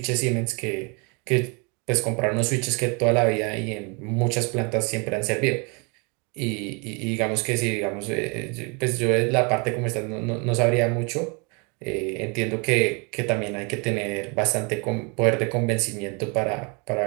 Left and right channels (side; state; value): left; quieter; 32.2 dB